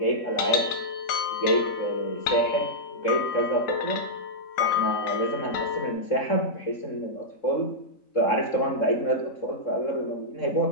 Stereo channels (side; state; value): right; late; 3.9 ms